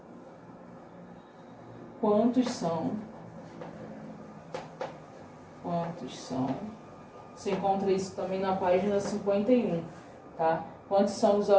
quantos são você encontra isso também na página 51, tá? Quantos são os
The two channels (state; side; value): identical; both; correlation 1.00